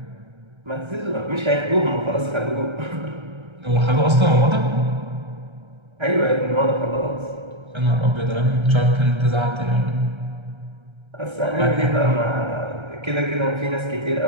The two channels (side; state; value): left; late; 1.3 ms